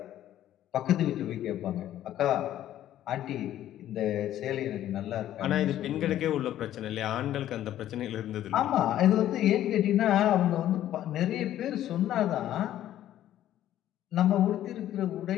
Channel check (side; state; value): right; quieter; 12.4 dB